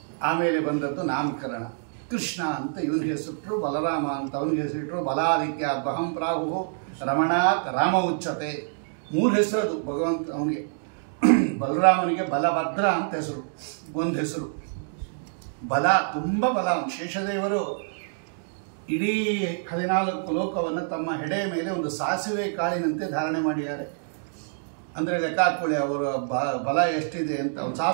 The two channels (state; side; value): silent; left; digital silence